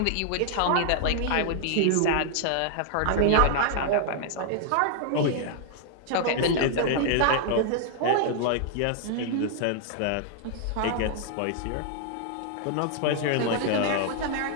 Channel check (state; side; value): different; both; correlation 0.00